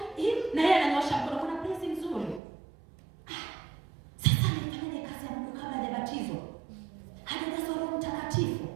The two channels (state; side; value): drops out; left; at 2.4 s